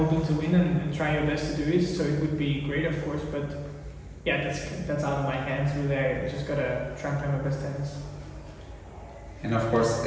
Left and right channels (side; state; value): both; identical; correlation 1.00